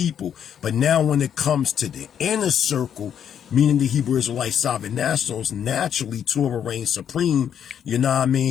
But now when it comes to the inner circle, meaning the Hebrew Israelite sovereign nationals, naturally Torah reigns supreme, you know what I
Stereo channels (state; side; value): quieter; right; 8.8 dB